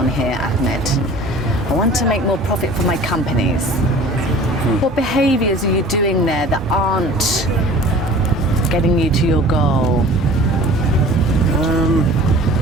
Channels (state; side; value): normal; both; correlation 0.45